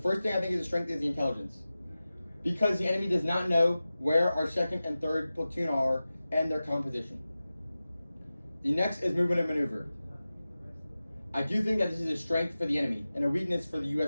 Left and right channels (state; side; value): inverted; both; correlation -0.95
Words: thing I think is a strength is the intelligence. Because the enemy does not know where our 2nd and 3rd platoon are and their composition. The next is movement and maneuver. I do think that this is a strength for the enemy and a weakness for the